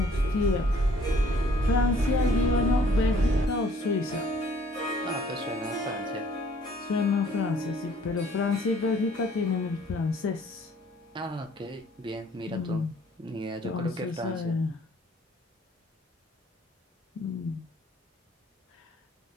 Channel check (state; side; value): normal; both; correlation 0.58